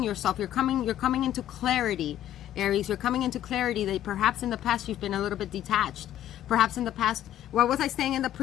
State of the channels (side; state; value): right; quieter; 12.0 dB